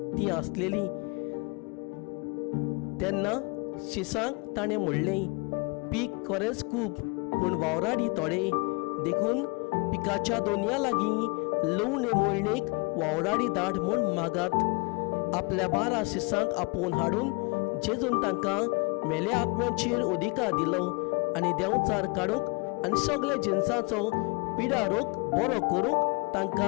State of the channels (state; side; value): quieter; right; 29.8 dB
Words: ती आसलेली. तेन्ना शिसांक ताणें म्हणलें, पीक खरेंच खूब पूण वावराडी थोडे, देखून पिकाच्या दोनया लागीं लवणे मोळणेक वावराडी धाड म्हूण मागात. आपल्या 12 शिसांक आपोवन हाडून जेजून तांकां मेल्या आत्म्याचेर अधिकार दिलो आनी देंवचार काडूंक आनी सगळे जिन्साचो पिडा रोग बरो करूंक